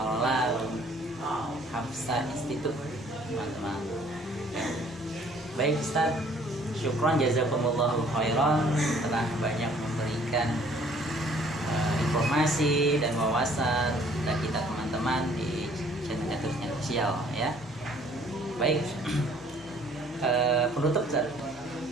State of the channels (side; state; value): both; normal; correlation 0.58